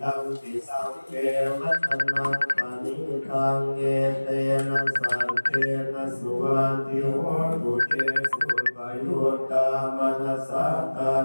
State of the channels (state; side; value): inverted; both; correlation -1.00